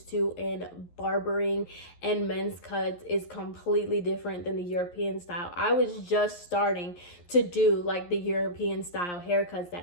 to in barbering and men's cuts is completely different than the European style. I was just starting to do like the European style haircuts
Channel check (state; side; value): late; right; 11 ms